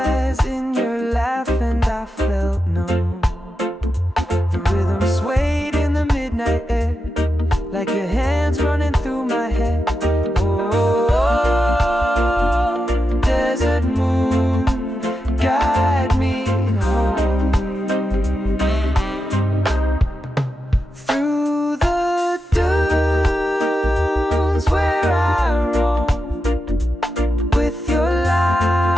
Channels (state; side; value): normal; both; correlation 0.89